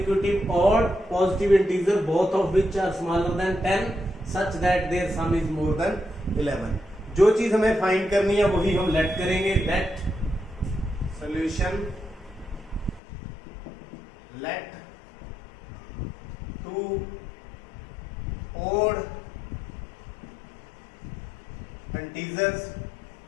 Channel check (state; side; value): drops out; right; at 13.0 s